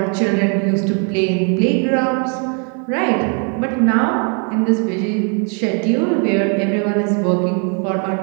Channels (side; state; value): left; quieter; 39.2 dB